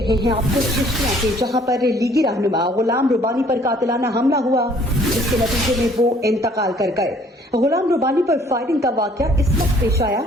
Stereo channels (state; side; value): normal; both; correlation 0.58